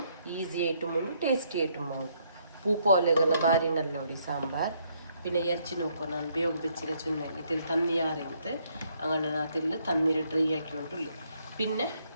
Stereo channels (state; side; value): inverted; both; correlation -0.71